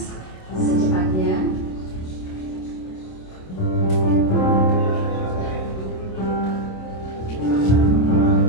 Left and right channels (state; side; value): late; right; 27 ms